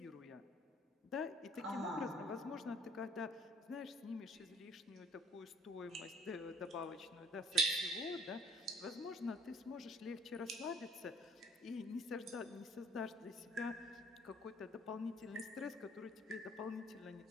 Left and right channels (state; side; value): normal; both; correlation 0.56